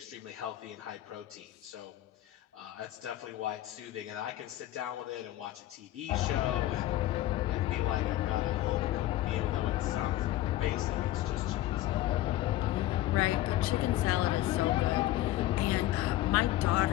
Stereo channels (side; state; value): right; quieter; 14.9 dB